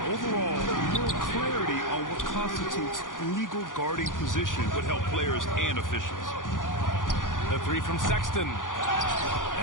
overall, more clarity on what constitutes legal guarding position would help players and officials. The three from Sexton.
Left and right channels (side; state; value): right; late; 0.89 ms